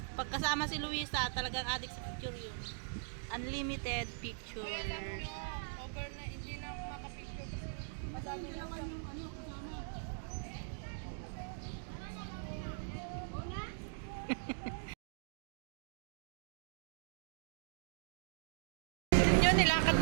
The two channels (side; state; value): left; silent; digital silence